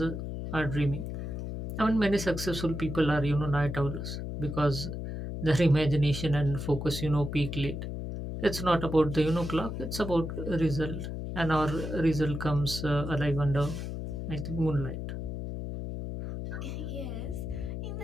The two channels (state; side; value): noise; left; hum, 5 dB below the sound